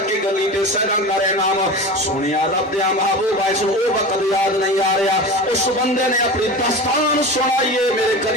کے گلی تے سیرا کرے نام سونیا رب دیا محبوبہ اس نو او وقت یاد نہیں آ رہا اس بندے نے اپنی داستان سنائیے میرے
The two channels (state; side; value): normal; both; correlation 0.30